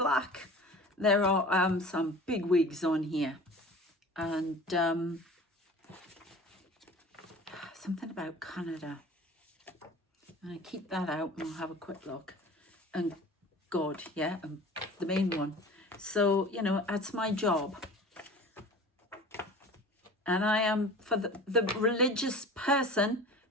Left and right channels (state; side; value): normal; both; correlation 0.40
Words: There are some big wigs on here. And something about Canada. I'm going to keep that out and we'll have a quick look. And God, yeah, the main one. So, you know, that's my job. And I am, for the religious person